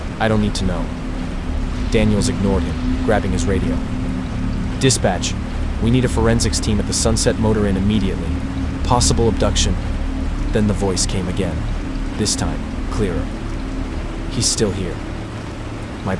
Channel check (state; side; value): identical; both; correlation 1.00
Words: I don't need to know." Daniels ignored him, grabbing his radio. "Dispatch, we need a forensics team at the Sunset Motor Inn immediately. Possible abduction." Then the voice came again, this time clearer. "He's still here." My